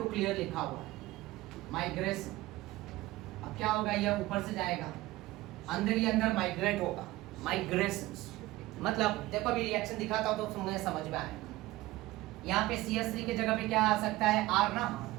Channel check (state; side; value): quieter; left; 18.1 dB